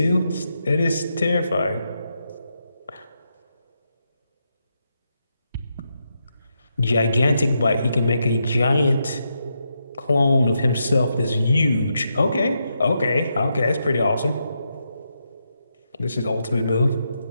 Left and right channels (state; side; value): inverted; both; correlation -0.83